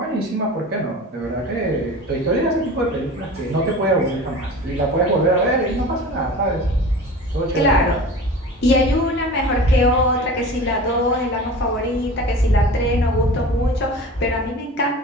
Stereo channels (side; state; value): both; normal; correlation 0.36